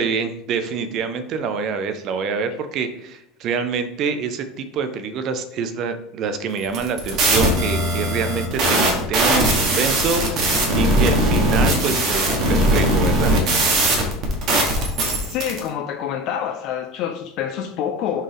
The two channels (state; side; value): normal; both; correlation 0.33